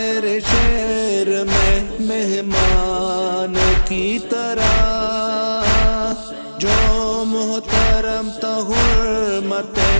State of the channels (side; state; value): both; inverted; correlation -1.00